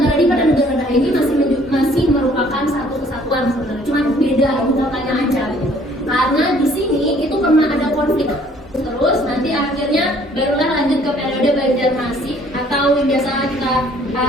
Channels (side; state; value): both; normal; correlation 0.59